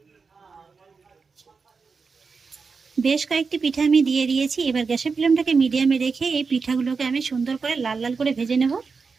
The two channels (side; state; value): left; quieter; 4.9 dB